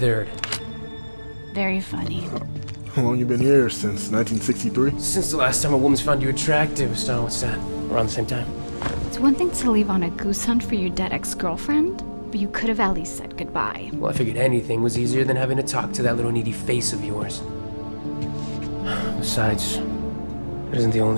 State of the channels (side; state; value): both; inverted; correlation -1.00